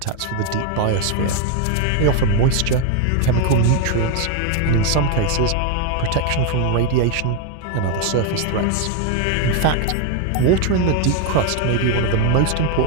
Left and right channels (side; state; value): both; different; correlation 0.01